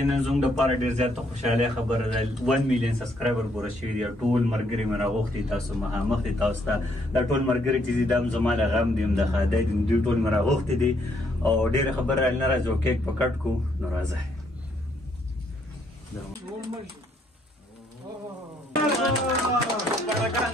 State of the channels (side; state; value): both; normal; correlation 0.71